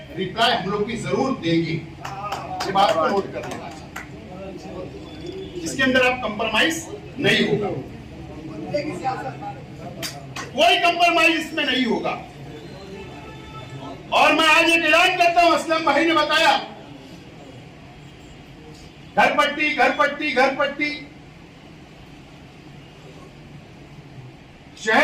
रिप्लाई हम लोग भी जरूर देंगे। ये बात को नोट कर लेना चाहिए, जिसके अंदर आप कंप्रोमाइज नहीं होगा, कोई कंप्रोमाइज इसमें नहीं होगा। और मैं आज एक ऐलान करता हूं, असलम भाई ने बताया घर पट्टी घर पट्टी घर पट्टी,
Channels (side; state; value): both; identical; correlation 1.00